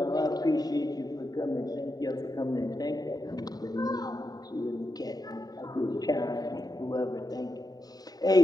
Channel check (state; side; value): late; right; 0.18 ms